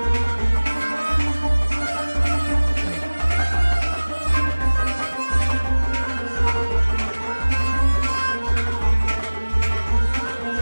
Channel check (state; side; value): inverted; both; correlation -1.00